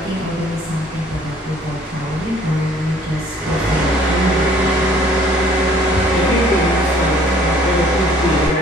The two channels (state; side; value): normal; both; correlation 0.57